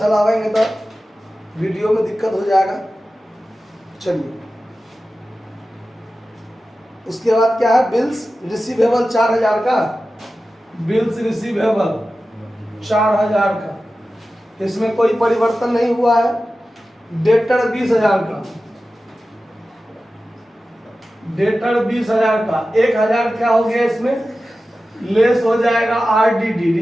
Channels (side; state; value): both; normal; correlation 0.94